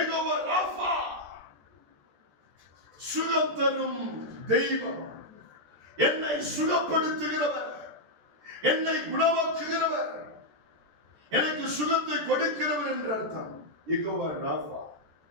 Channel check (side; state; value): left; late; 13 ms